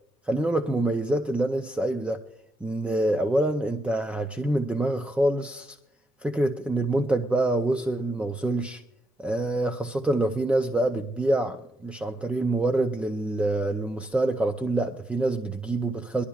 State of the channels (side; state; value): both; normal; correlation 0.80